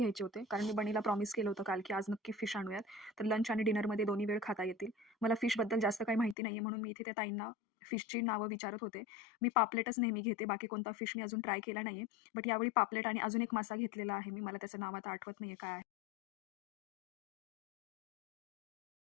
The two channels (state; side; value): drops out; right; at 6.4 s